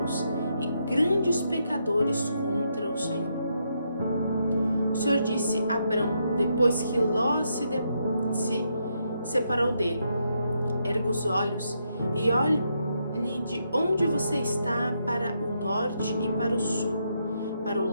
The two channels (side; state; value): both; inverted; correlation -0.79